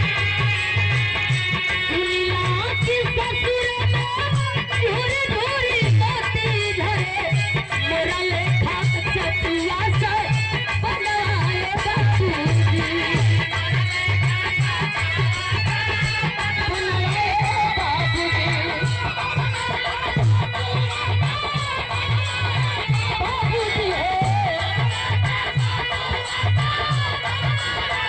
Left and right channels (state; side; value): identical; both; correlation 1.00